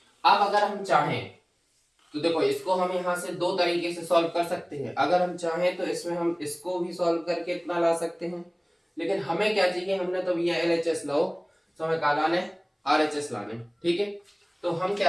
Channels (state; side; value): identical; both; correlation 1.00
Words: अब अगर हम चाहें तो देखो, इसको हम यहाँ से दो तरीके से सॉल्व कर सकते हैं। अगर हम चाहें तो इसमें हम इसको भी सॉल्व करके इतना ला सकते हैं, लेकिन हमें क्या चाहिए, हमने तो भैया LHS लो, तो हमें क्या लाने, RHS लाने। ठीक है, तो हम